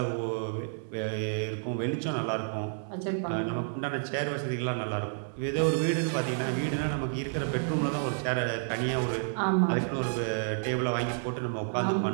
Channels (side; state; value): left; silent; 58 dB below the other